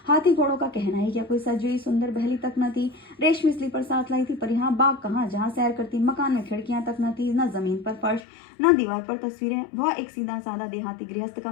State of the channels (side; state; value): right; drops out; at 8.2 s